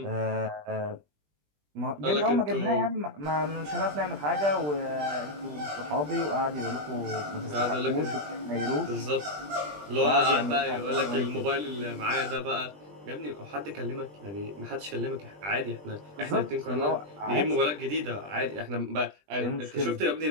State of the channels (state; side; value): late; left; 20 ms